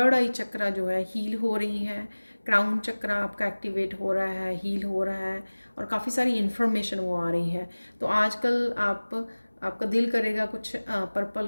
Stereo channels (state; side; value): inverted; both; correlation -1.00